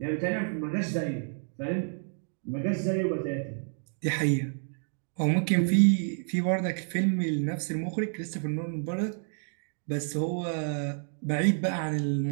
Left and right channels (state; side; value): silent; left; 58 dB below the other